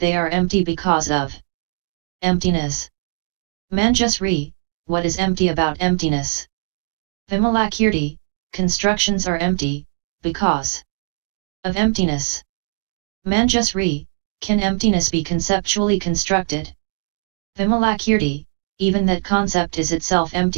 are empty because of emptiness. Manjusri, what is empty about emptiness? Vimalakirti, constructions are empty, because of emptiness. Manjusri, can emptiness be conceptually constructed? Vimalakirti, even that concept is itself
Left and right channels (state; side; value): silent; left; digital silence